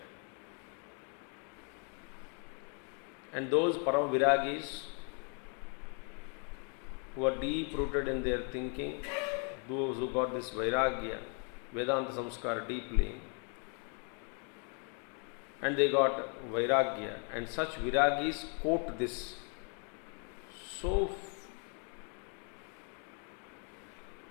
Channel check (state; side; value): quieter; right; 39.8 dB